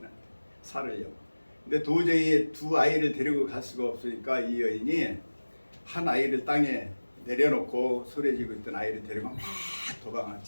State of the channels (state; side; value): inverted; both; correlation -1.00